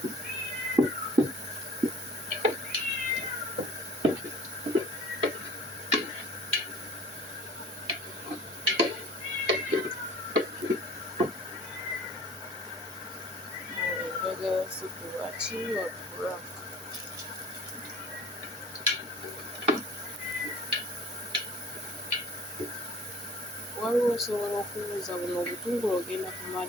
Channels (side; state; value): both; normal; correlation 0.47